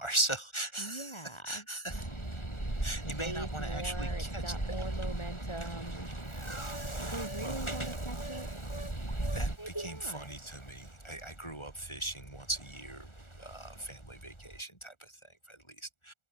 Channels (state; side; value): late; right; 1.4 ms